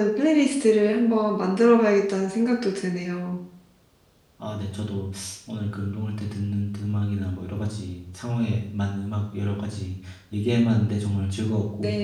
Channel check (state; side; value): identical; both; correlation 1.00